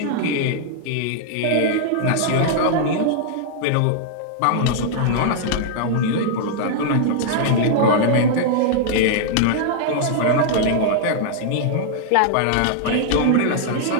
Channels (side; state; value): both; different; correlation -0.01